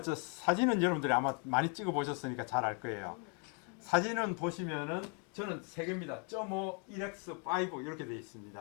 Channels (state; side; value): quieter; right; 38.4 dB